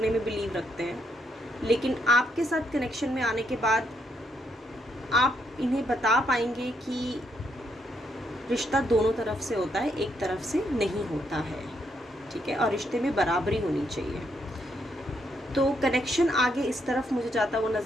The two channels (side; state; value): both; normal; correlation 0.76